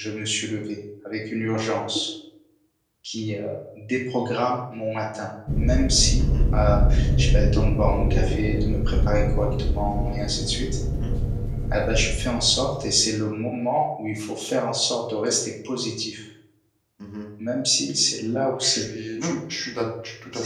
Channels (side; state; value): both; identical; correlation 1.00